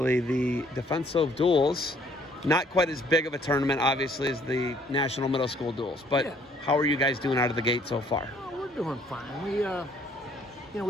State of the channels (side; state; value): both; normal; correlation 0.61